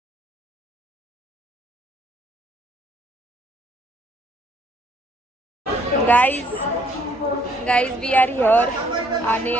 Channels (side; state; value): both; normal; correlation 0.66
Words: गाईज वी आर हिअर आणि